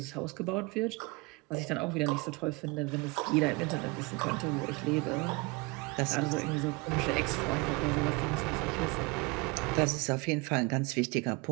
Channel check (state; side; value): quieter; left; 26.7 dB